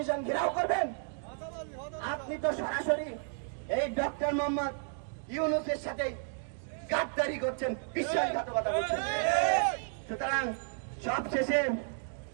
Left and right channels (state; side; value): silent; left; 56 dB below the other